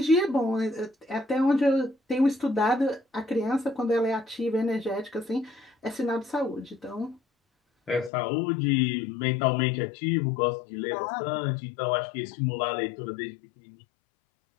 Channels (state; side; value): drops out; right; at 8.1 s